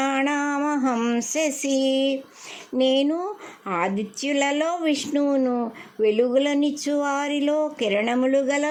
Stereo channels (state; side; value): identical; both; correlation 1.00